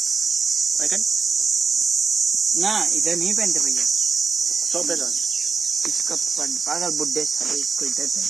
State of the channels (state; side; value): quieter; left; 5.0 dB